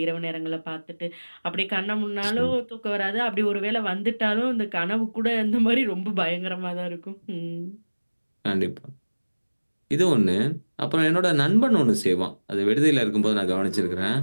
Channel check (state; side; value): inverted; both; correlation -1.00